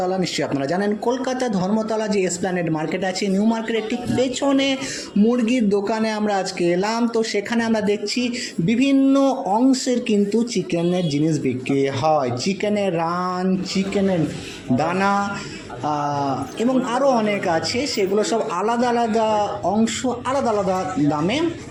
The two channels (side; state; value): both; identical; correlation 1.00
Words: নিশ্চয়ই আপনারা জানেন কলকাতা ধর্মতলা যে এসপ্ল্যানেড মার্কেট আছে, নিউ মার্কেটের ঠিক পেছনে মুরগির দোকানে আমরা আজকে এলাম। তো সেখানে আমরা দেখছি বিভিন্ন অংশের কিন্তু চিকেনের জিনিস বিক্রি হয়, চিকেনের রান, চিকেনের দানা এবং আরও অনেক আছে। সেগুলো সব আলাদা আলাদা অংশ, আলাদা আলাদা দামে